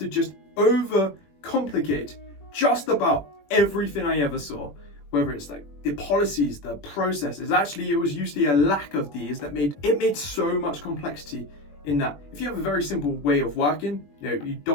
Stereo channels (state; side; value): late; right; 21 ms